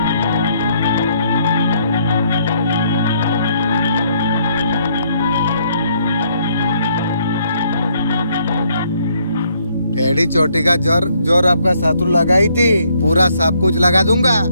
एड़ी चोटी का जोर आपका शत्रु लगाई थी, पूरा सब कुछ लगा दूंगा,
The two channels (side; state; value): both; inverted; correlation -0.69